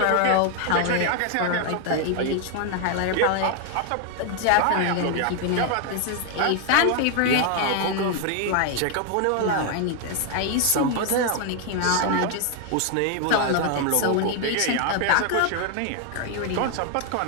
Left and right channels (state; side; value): different; both; correlation 0.01